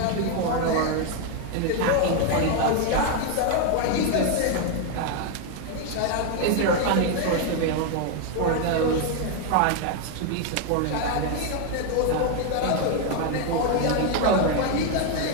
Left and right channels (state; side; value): different; both; correlation 0.01